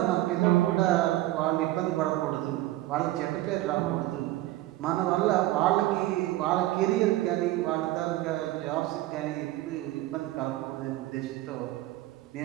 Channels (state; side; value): quieter; left; 16.4 dB